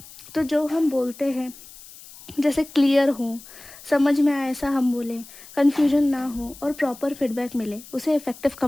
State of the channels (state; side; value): noise; left; hiss, 19 dB below the sound